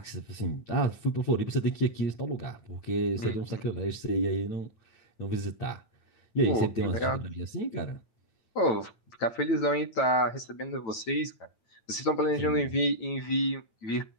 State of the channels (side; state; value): right; late; 9.0 ms